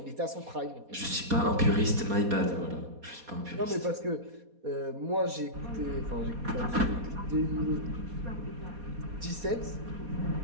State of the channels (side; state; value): left; late; 4.2 ms